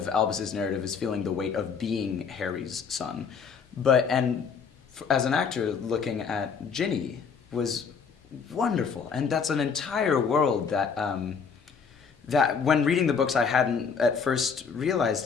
Albus's narrative is feeling the weight of being Harry's son, as an actor, looking at Ginny was wonderful, and that's an entire world that that when reading the books I hadn't at first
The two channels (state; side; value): quieter; right; 6.0 dB